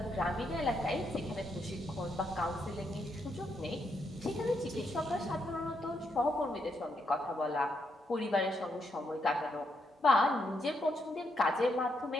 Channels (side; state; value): both; normal; correlation 0.79